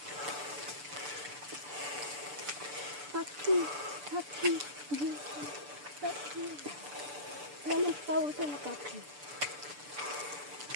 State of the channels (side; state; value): left; late; 6.8 ms